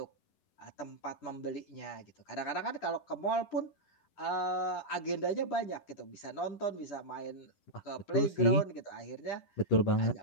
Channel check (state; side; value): late; right; 10 ms